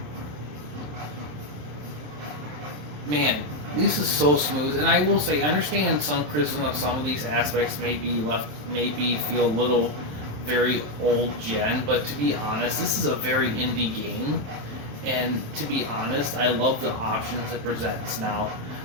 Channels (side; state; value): left; late; 27 ms